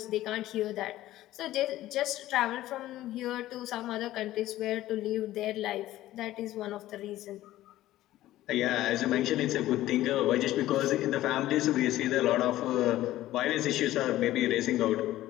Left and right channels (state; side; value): quieter; right; 15.0 dB